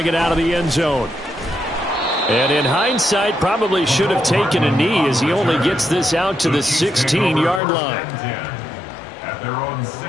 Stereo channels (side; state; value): right; drops out; at 7.6 s